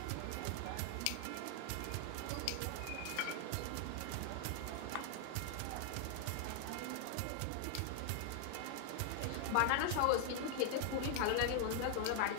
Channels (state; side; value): different; both; correlation 0.00